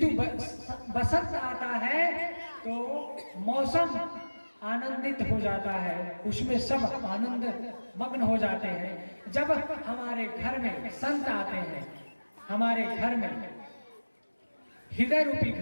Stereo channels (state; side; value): inverted; both; correlation -1.00